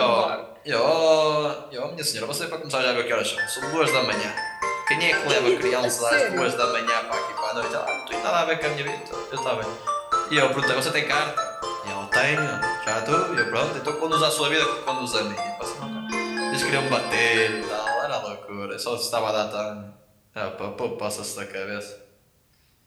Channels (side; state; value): both; identical; correlation 1.00